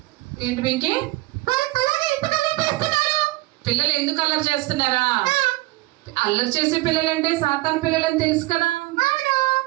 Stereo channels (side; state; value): left; quieter; 20.4 dB